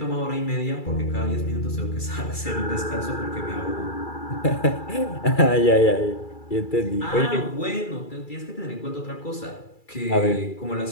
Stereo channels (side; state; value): right; late; 2.3 ms